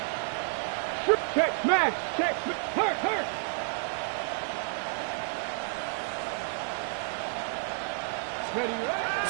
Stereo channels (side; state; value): left; silent; 58 dB below the other